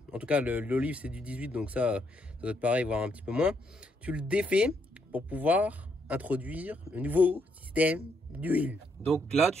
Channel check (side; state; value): both; normal; correlation 0.75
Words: En tout cas, l'olive, c'est du 18, donc ça doit être pareil, voire un petit peu moins. Tu le défais pour pouvoir introduire le nouveau système d'huile. Donc là,